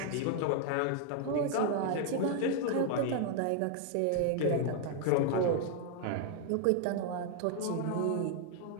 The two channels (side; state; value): both; different; correlation 0.00